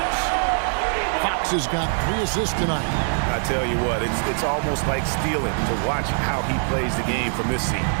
Fox has got 3 assists tonight. I tell you what, it's almost like stealing to watch how he plays the game from this seat.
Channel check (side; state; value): left; silent; 63 dB below the other